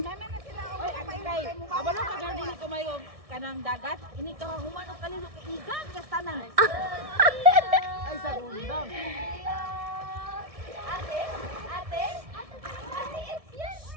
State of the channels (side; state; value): left; late; 1.7 ms